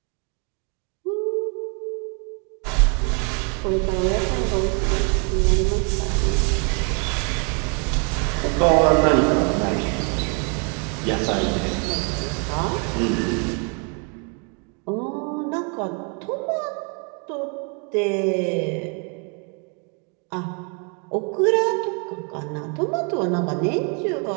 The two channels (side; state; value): left; quieter; 37.0 dB